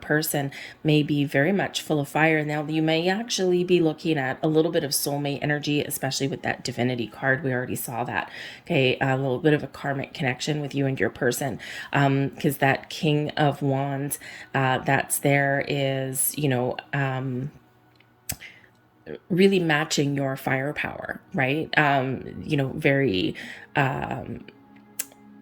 may be very much full of fire. Now, you may actually be looking at a little bit of soulmate energy, especially with that divinity card. We already saw that. Okay, a little bit of a karmic connection with you and your person, because that King of Wands that's there is, really matching your firepower, right? Very, how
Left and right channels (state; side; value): identical; both; correlation 1.00